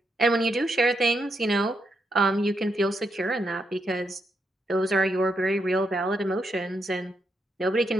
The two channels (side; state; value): both; normal; correlation 0.81